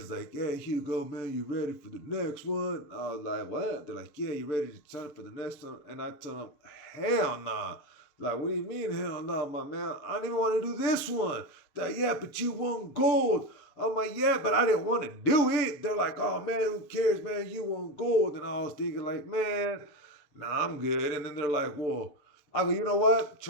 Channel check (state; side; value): late; right; 7.0 ms